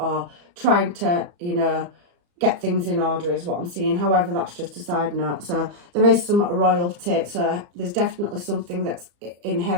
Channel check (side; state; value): left; late; 34 ms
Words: trying to, you know, get things in order is what I'm seeing. However, that's just a side note. So there is some royalty. So there's definitely something that's